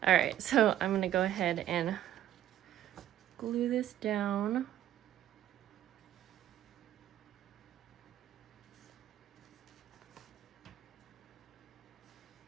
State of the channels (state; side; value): quieter; left; 12.1 dB